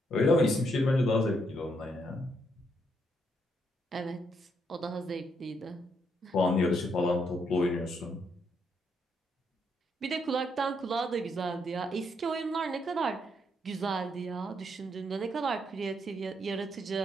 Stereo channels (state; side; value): normal; both; correlation 0.76